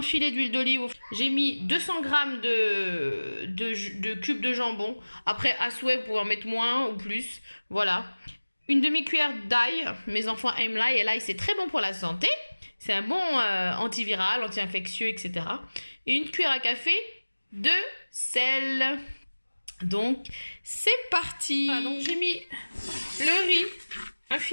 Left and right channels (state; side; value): inverted; both; correlation -1.00